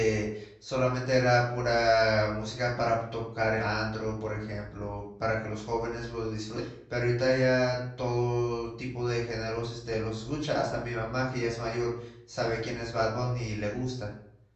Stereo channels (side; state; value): both; identical; correlation 1.00